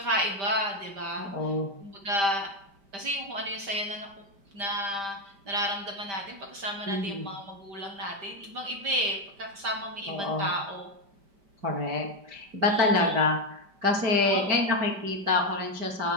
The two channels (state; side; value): late; left; 5.1 ms